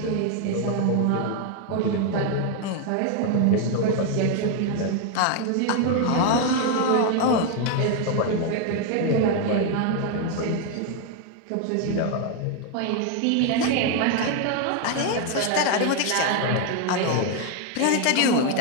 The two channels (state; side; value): different; both; correlation 0.01